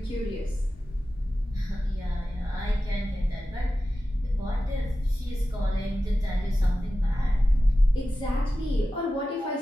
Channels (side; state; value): both; normal; correlation 0.94